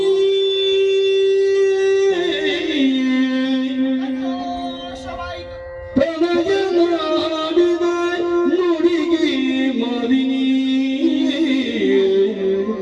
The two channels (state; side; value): identical; both; correlation 1.00